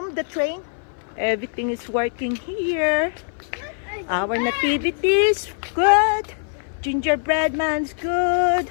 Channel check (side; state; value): right; silent; 58 dB below the other